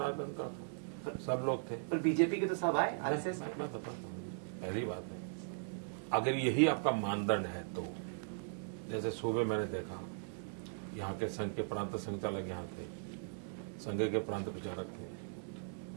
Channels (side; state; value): left; silent; digital silence